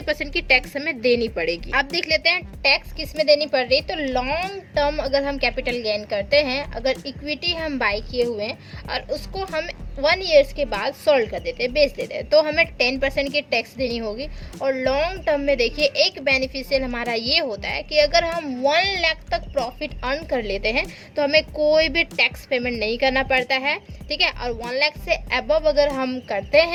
% की टैक्स हमें देनी पड़ेगी। अब देख लेते हैं टैक्स किस में देनी पड़ रही है। तो लॉन्ग टर्म अगर हम कैपिटल गेन करते हैं, अगर इक्विटी हम बाई किए हुए हैं और उसको हम 1 ईयर्स के बाद सोल्ड कर देते हैं, बेच देते हैं, तो हमें 10% की टैक्स देनी होगी। और लॉन्ग टर्म में देखिए एक बेनिफिशियल हमारा ये होता है कि अगर हम 1 लाख तक प्रॉफिट अर्न कर लेते हैं तो हमें कोई भी टैक्स पेमेंट नहीं करना पड़ता है। ठीक है, और 1 लाख से अबव अगर हम करते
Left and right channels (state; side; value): identical; both; correlation 1.00